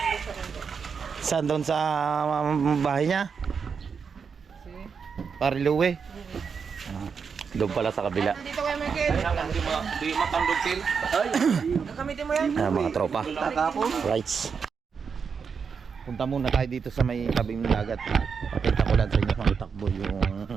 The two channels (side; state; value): left; quieter; 6.0 dB